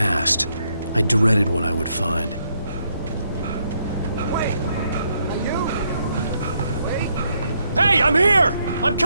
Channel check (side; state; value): both; inverted; correlation -0.76